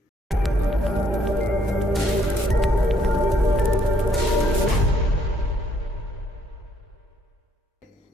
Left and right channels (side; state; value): both; normal; correlation 0.68